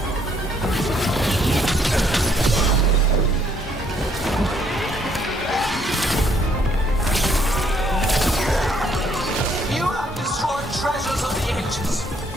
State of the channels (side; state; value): both; normal; correlation 0.68